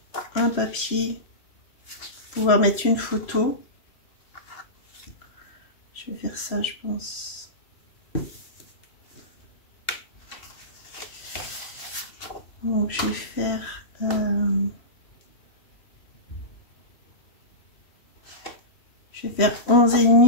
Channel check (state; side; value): late; right; 3.0 ms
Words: un papier pour pouvoir mettre une photo. Je vais faire ça, je pense. Donc je vais faire je vais faire